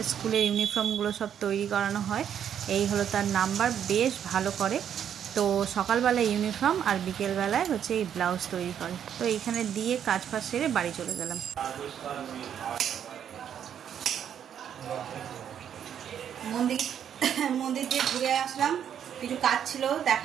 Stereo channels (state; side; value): quieter; left; 9.0 dB